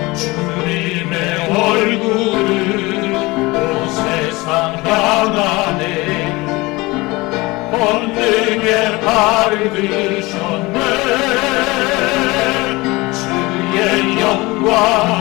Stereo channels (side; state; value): right; quieter; 22.4 dB